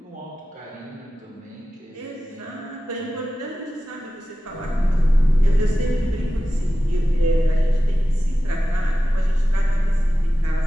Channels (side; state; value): both; normal; correlation 0.94